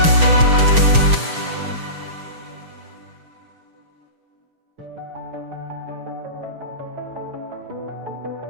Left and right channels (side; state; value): left; late; 6.2 ms